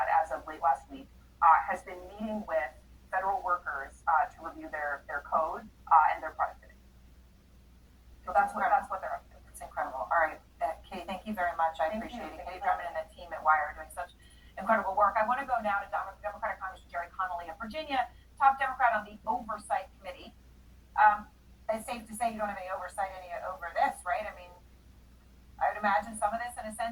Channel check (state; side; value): identical; both; correlation 1.00